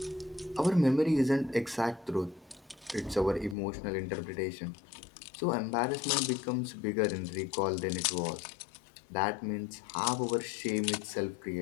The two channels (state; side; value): drops out; right; at 3.6 s